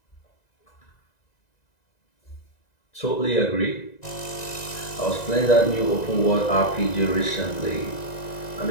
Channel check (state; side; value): late; right; 1.9 ms